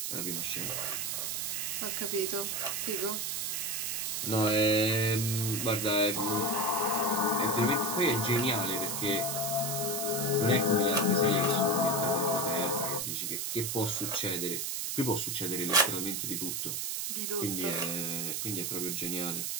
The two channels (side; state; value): right; noise; hiss, 1 dB below the sound